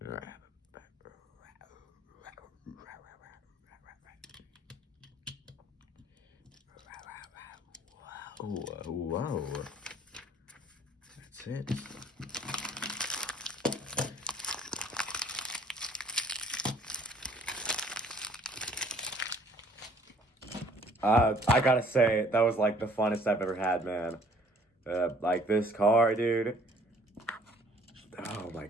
Whoa. That's it. I gotta say, that was like the funnest I've ever had, man. Like this car, dude. Oh my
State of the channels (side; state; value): both; normal; correlation 0.58